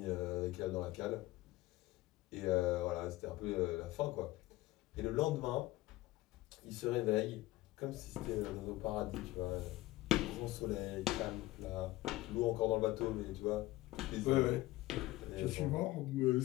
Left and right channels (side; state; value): right; quieter; 18.0 dB